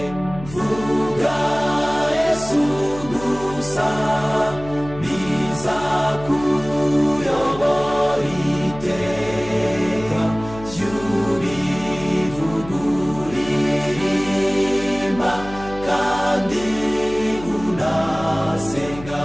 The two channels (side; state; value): left; noise; hum, 14 dB below the sound